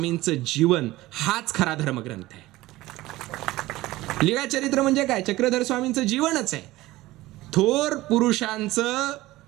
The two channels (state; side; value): quieter; left; 17.9 dB